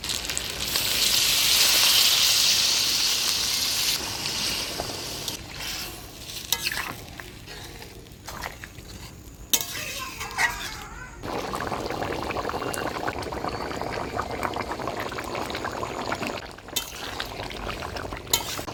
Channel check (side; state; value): both; identical; correlation 1.00